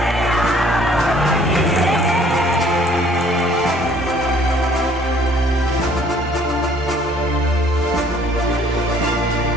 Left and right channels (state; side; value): normal; both; correlation 0.58